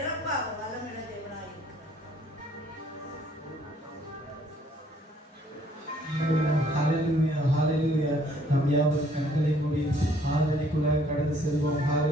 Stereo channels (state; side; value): normal; both; correlation 0.62